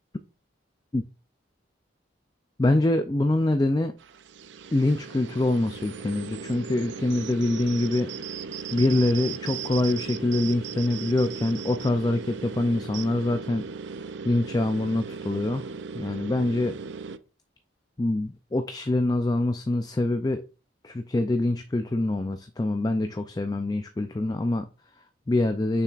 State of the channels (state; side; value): normal; both; correlation 0.87